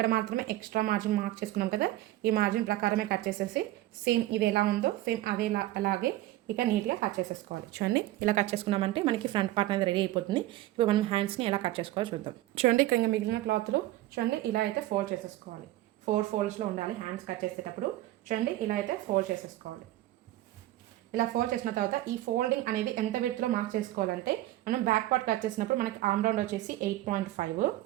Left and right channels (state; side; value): quieter; left; 15.7 dB